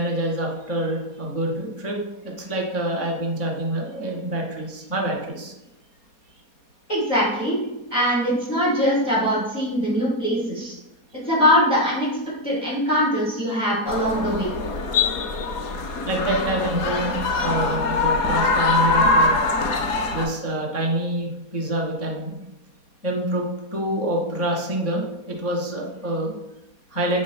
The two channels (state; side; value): late; right; 4.2 ms